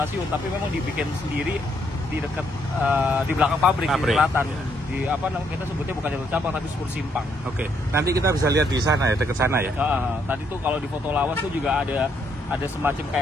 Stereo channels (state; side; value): normal; both; correlation 0.73